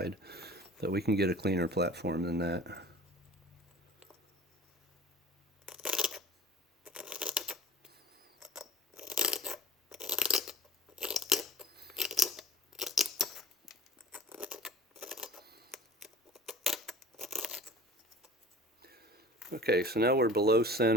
So we can get a cleaner platform than that. Okay, so now we're below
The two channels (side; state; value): both; normal; correlation 0.42